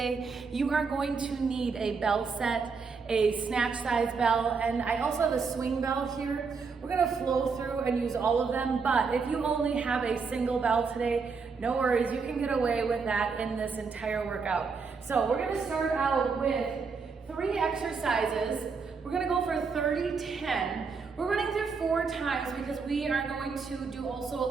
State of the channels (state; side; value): quieter; left; 5.1 dB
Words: You are going to need a bell set, a snatch size bell, and I also have a swing bell here. We're gonna flow through and use all of them, but if you only have a single bell today, no worries, you can get away with that in this entire workout. So we're gonna start out with 3 exercises. We're gonna go for 30-10. We're running through 4 times because we are going to do also a